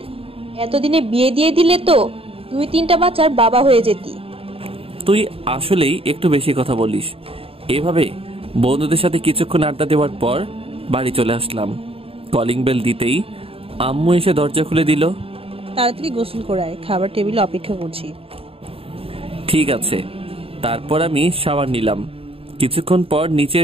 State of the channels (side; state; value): left; late; 0.27 ms